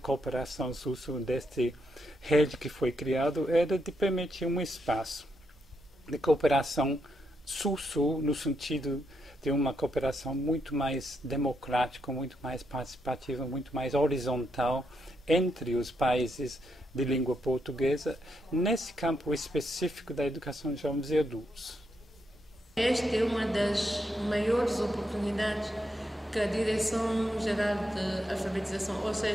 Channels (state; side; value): normal; both; correlation 0.81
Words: Sul-Sul desta rede que foi criada era de permitir um espaço de cooperação Sul-Sul no sentido de uma cooperação muito mais democrática, muito mais participativa, muito mais horizontal entre os países de língua portuguesa, nesse campo específico da educação de jovens e adultos. Esta é uma das maiores oportunidades que a Direção-Geral de Alfabetização, ou